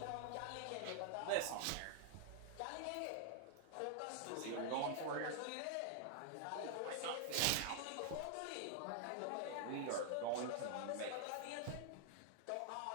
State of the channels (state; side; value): different; both; correlation -0.01